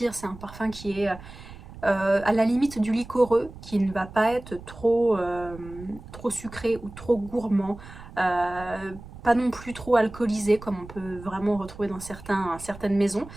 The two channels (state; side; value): noise; right; rumble, 16 dB below the sound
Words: C'est un parfum qui est à la limite du liquoreux, qui ne va pas être trop sucré ou trop gourmand. Pas non plus trop alcoolisé comme on peut vraiment retrouver dans certaines maisons.